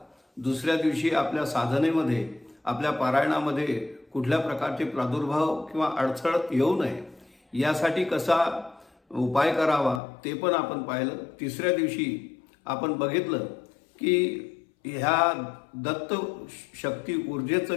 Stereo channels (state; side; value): drops out; right; at 10.0 s